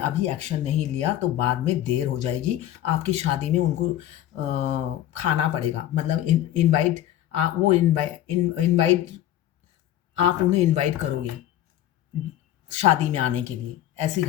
एक्शन नहीं लिया तो बाद में देर हो जाएगी, आपकी शादी में उनको खाना पड़ेगा। मतलब इनवाइट वो इनवाइट आप उन्हें इनवाइट करोगे शादी में आने के लिए, ऐसी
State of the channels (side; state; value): right; quieter; 12.6 dB